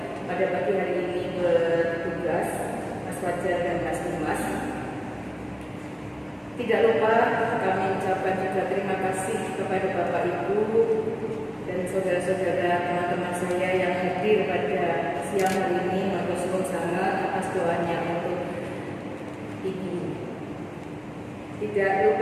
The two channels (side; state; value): both; identical; correlation 1.00